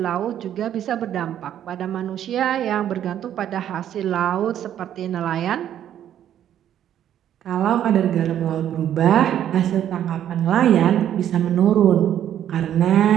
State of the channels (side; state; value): left; quieter; 10.6 dB